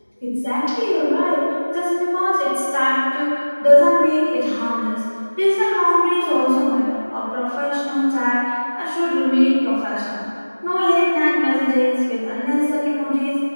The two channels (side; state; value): both; inverted; correlation -1.00